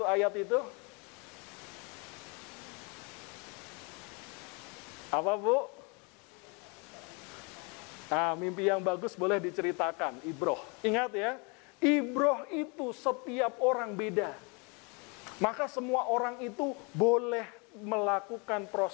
ayat itu? Apa, Bu? Mimpi yang bagus boleh diceritakan, ibroh. Ingat ya, ibroh itu setiap orang beda. Maka semua orang itu boleh melakukan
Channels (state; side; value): quieter; right; 31.9 dB